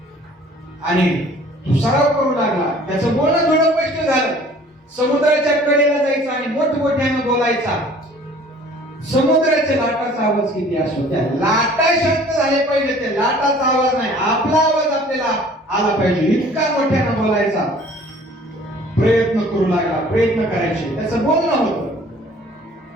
आणि तो सराव करू लागला, त्याचं बोलणं थोडं स्पष्ट झालं, समुद्राच्या कडेला जायचा आणि मोठमोठ्यानं बोलायचा. समुद्राच्या लाटाचा आवाज किती असतो, त्या लाटा शांत झाले पाहिजे, त्या लाटाचा आवाज नाही, आपला आवाज आपल्याला आला पाहिजे, इतका मोठ्यानं बोलायचा. प्रयत्न करू लागला, प्रयत्न करायचे, त्याचं बोलणं होतं,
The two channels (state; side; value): normal; both; correlation 0.51